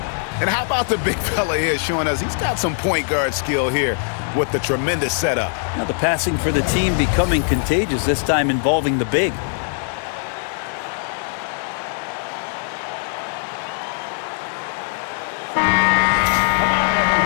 And how about the big fella here showing us he's got some point guard skill here with the tremendous setup. Now the passing for the team becoming contagious, this time involving the big.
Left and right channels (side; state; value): right; silent; digital silence